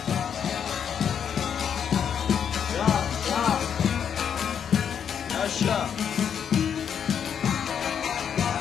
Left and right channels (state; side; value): quieter; right; 8.0 dB